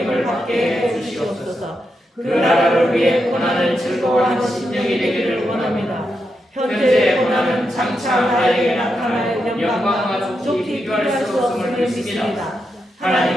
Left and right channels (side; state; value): both; normal; correlation 0.85